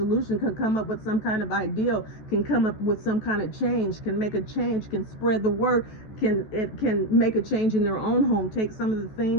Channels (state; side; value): late; right; 14 ms